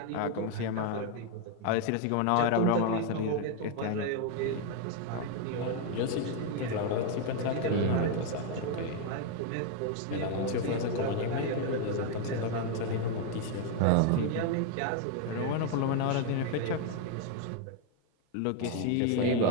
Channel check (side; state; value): both; different; correlation 0.00